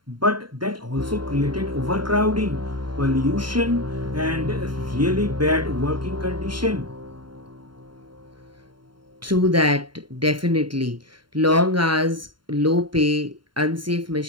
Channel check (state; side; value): late; left; 0.72 ms